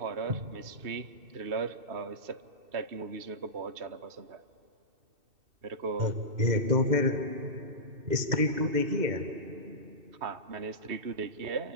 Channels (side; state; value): left; late; 2.7 ms